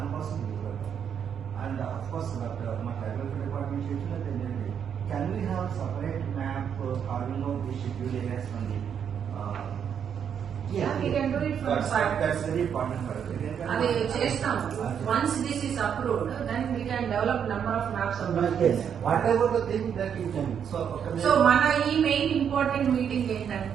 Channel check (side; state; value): left; quieter; 8.0 dB